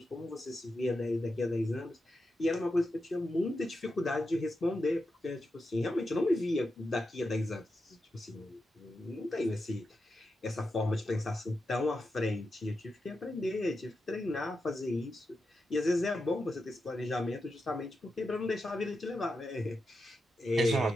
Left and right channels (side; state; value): both; normal; correlation 0.88